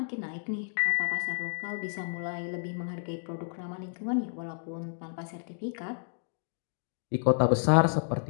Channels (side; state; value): right; silent; digital silence